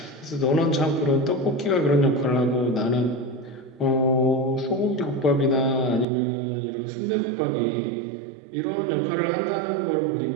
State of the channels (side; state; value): left; drops out; at 6.1 s